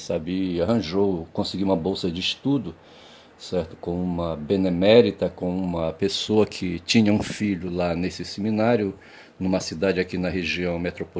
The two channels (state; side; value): identical; both; correlation 1.00